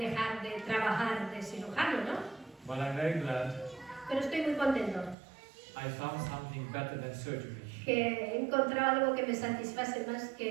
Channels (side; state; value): left; drops out; at 5.2 s